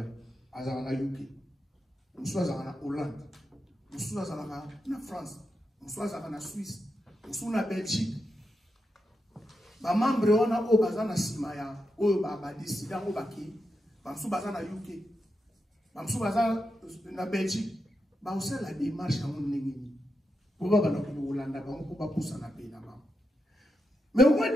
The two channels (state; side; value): normal; both; correlation 0.86